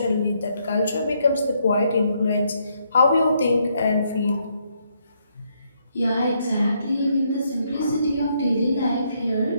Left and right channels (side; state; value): both; inverted; correlation -0.74